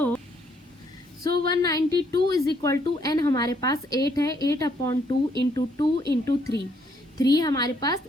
192 इज इक्वल टू एन हमारे पास 8 है, 8 अपॉन 2 इंटू 2 इंटू 3, 3 हमारे पास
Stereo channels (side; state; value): both; normal; correlation 0.70